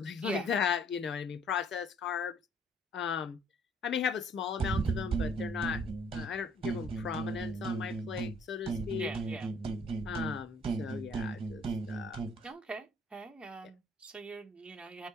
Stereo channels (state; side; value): normal; both; correlation 0.60